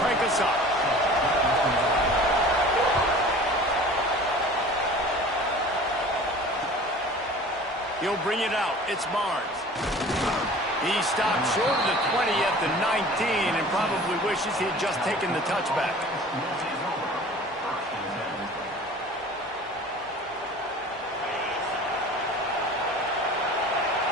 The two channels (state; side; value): normal; both; correlation 0.43